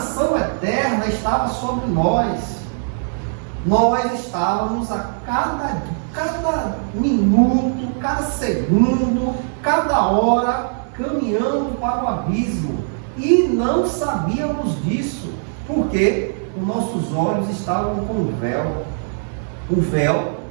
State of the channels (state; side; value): silent; left; digital silence